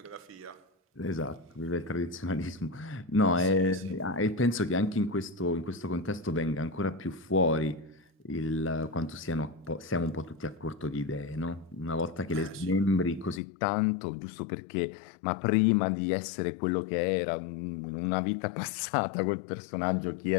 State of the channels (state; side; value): drops out; right; at 13.4 s